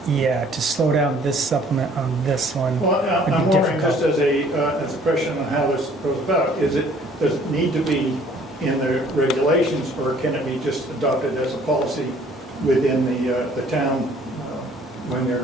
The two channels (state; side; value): normal; both; correlation 0.57